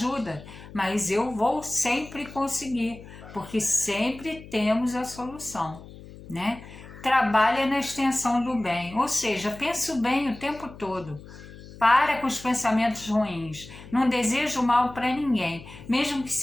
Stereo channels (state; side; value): noise; left; hum, 17 dB below the sound